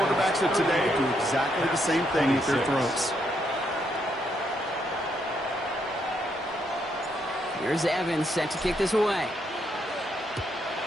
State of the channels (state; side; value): normal; both; correlation 0.76